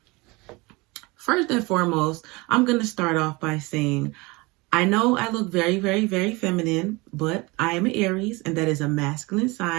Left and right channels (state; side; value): quieter; left; 24.6 dB